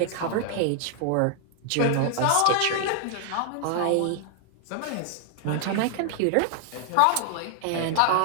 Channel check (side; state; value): both; different; correlation -0.01